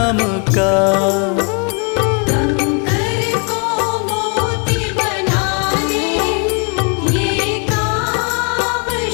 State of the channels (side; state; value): right; quieter; 35.9 dB